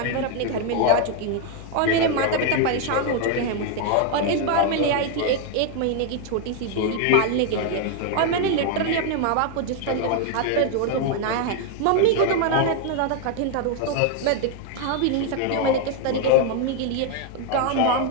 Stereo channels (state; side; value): different; both; correlation 0.00